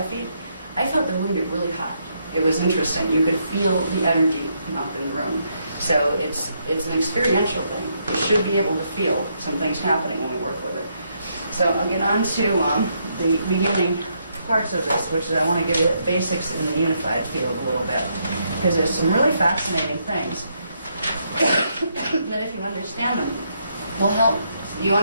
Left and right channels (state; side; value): inverted; both; correlation -0.76